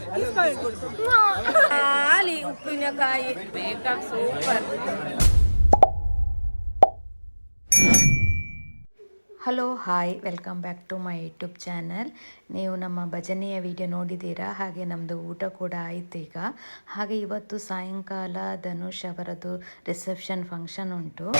ಖಾಲಿ ಉಪ್ಪಿನಕಾಯಿ ಬೇಕಾ super. Hello hi, welcome back to my YouTube channel. ನೀವು ನಮ್ಮ ಭಜನೆಯ ವಿಡಿಯೋ ನೋಡಿದ್ದೀರಾ, ಹಾಗೆ ನಮ್ಮದು ಊಟ ಕೂಡ ಆಯಿತು ಈಗ. ಹಾಗೆ ಇವತ್ತು ಸಾಯಂಕಾಲ ಧನುಷ್ ಅವರದ್ದು ರಿಸೆಪ್ಷನ್ ಫಂಕ್ಷನ್ ಉಂಟು.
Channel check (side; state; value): both; inverted; correlation -1.00